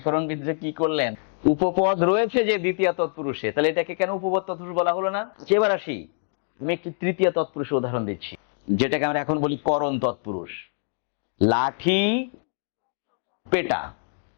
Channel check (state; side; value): silent; right; digital silence